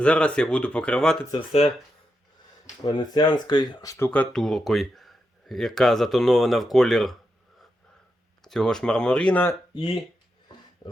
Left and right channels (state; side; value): normal; both; correlation 0.86